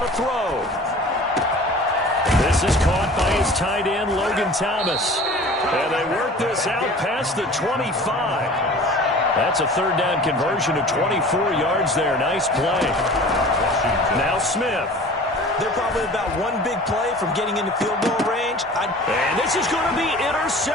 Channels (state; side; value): normal; both; correlation 0.43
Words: throw. This is caught by his tight end, Logan Thomas. And they work this out past the 25. That's a 3rd down conversion of 24 yards there. Nice play. Now Smith. They're probably about one big play from getting into field goal range. And this is going to be